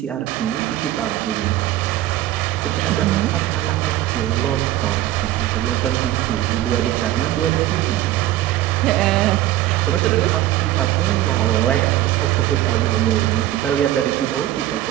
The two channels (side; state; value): left; quieter; 14.1 dB